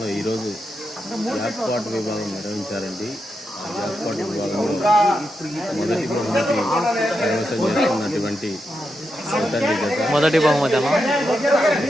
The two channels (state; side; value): normal; both; correlation 0.86